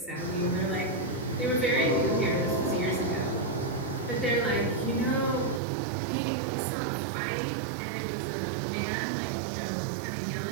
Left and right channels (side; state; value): left; drops out; at 5.6 s